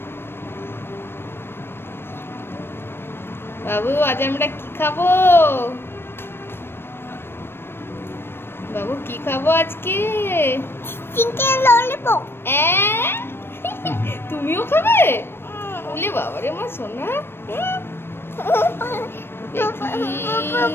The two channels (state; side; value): late; right; 0.11 ms